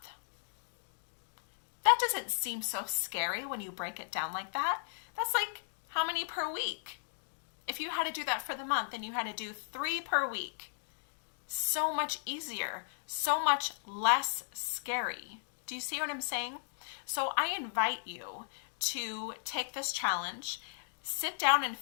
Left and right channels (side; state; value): right; silent; digital silence